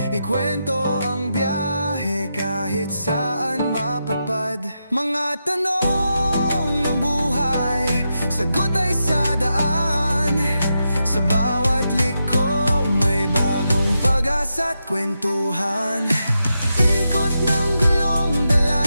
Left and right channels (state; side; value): inverted; both; correlation -0.87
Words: Ikwento ang biyahe kahit saan mapadpad. Mga tanong ng buhay, sagot ay sa daan. Sa bawat liko may bagong pag-asa't kwentuhan. Ikot ng gulong,